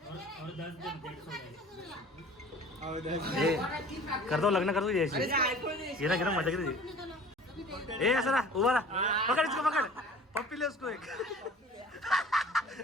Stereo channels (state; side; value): normal; both; correlation 0.45